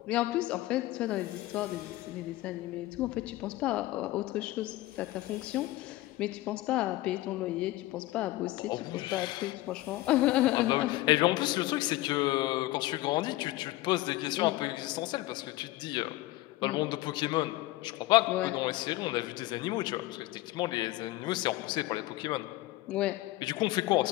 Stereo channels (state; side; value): quieter; right; 17.6 dB